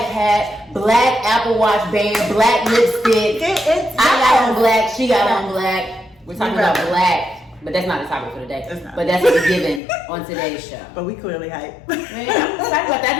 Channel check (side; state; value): right; drops out; at 9.8 s